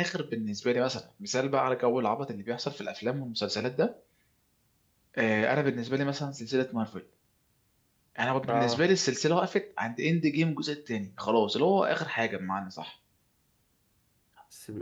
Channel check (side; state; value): both; identical; correlation 1.00